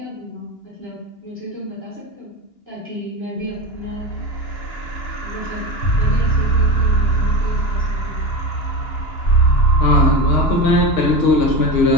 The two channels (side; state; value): right; late; 2.9 ms